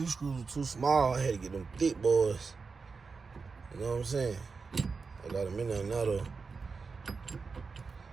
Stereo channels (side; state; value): left; quieter; 4.8 dB